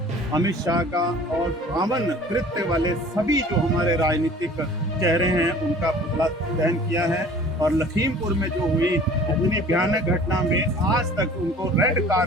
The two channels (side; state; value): both; normal; correlation 0.47